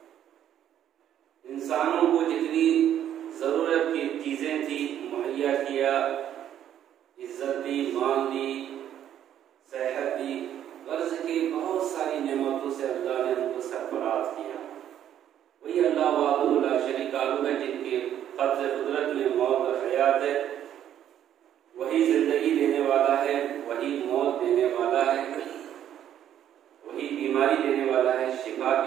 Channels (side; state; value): left; quieter; 10.6 dB